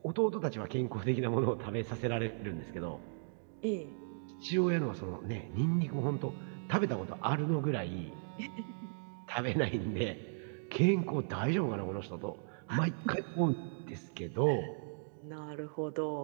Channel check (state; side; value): silent; left; digital silence